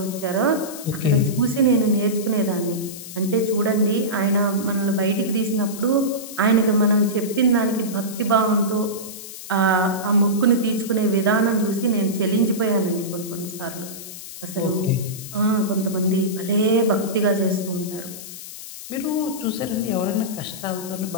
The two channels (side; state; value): left; noise; hiss, 12 dB below the sound